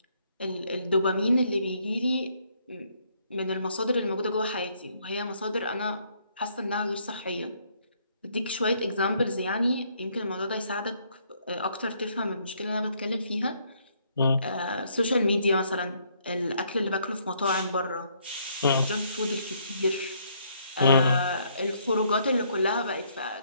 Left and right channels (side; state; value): both; inverted; correlation -0.69